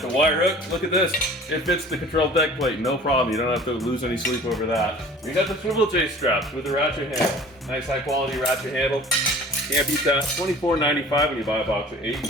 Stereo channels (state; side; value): normal; both; correlation 0.46